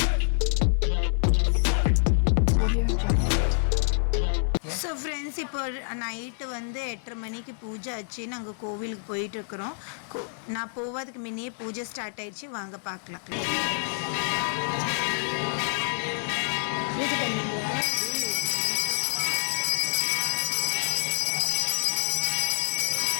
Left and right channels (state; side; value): silent; right; 60 dB below the other